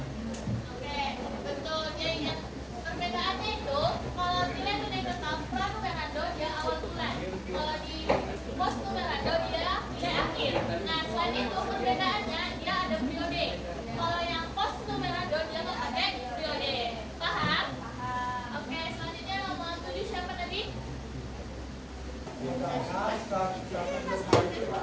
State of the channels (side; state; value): both; identical; correlation 1.00